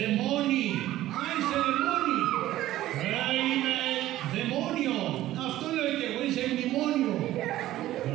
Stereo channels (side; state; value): left; quieter; 14.6 dB